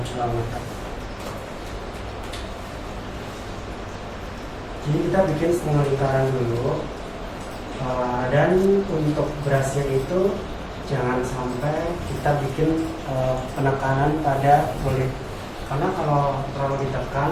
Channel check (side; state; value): both; identical; correlation 1.00